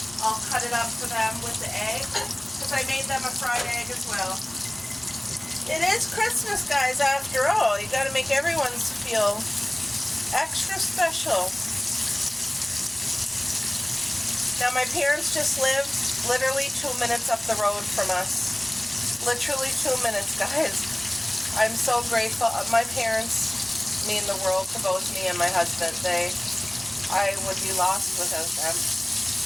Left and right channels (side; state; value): right; noise; hum, 24 dB below the sound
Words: I'll cut it up for them with the egg. Because I made them a fried egg as well. It is Christmas, guys, after all. You got to make everyone's feel extra special. Now my parents just lived literally 2 minutes up the road from us. Literally 2 minutes, guys. I'm so grateful. My parents mean the world to both me and my husband. I would be lost without them.